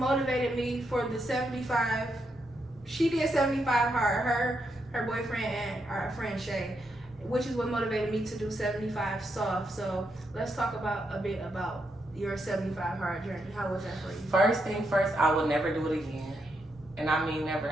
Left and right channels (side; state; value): both; normal; correlation 0.81